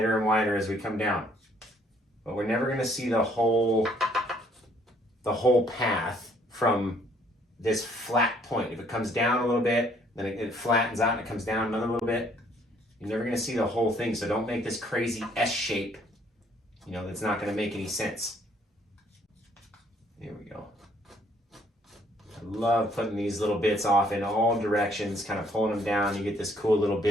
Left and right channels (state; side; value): normal; both; correlation 0.64